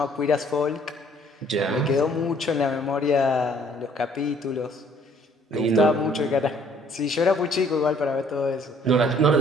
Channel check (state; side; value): normal; both; correlation 0.60